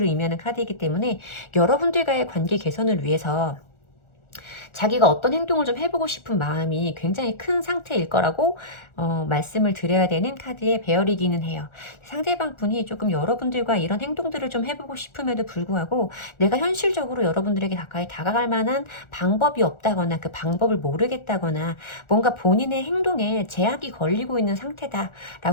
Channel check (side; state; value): right; late; 1.4 ms